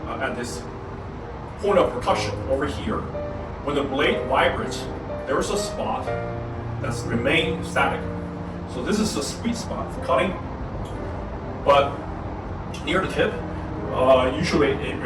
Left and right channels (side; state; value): both; identical; correlation 1.00